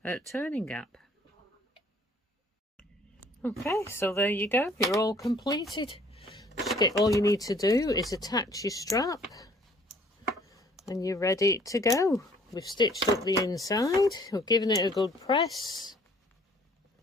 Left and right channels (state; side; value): normal; both; correlation 0.58